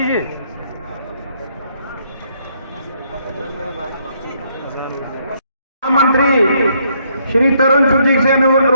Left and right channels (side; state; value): both; inverted; correlation -0.71